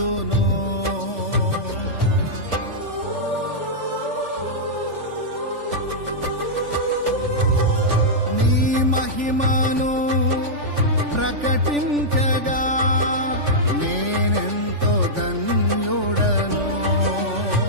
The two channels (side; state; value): left; late; 3.4 ms